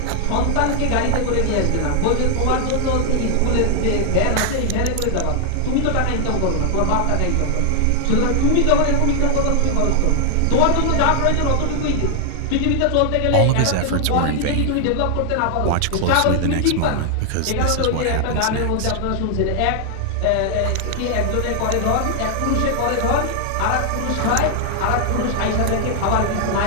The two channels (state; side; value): different; both; correlation 0.00